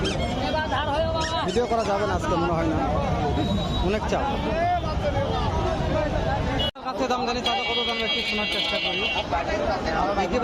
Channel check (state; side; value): identical; both; correlation 1.00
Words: ভিডিও করা যাবে না আজকে মনে হয় না, অনেক চাপ। কাছে দাম জানি তাদের কত দাম একটু শোনার চেষ্টা করি।